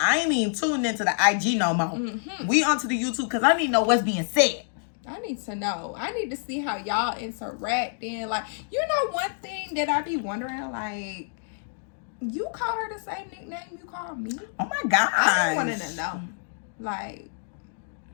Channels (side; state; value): right; silent; digital silence